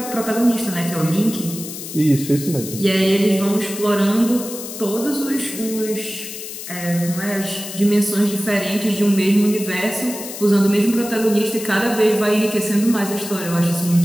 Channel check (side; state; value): left; noise; hiss, 10 dB below the sound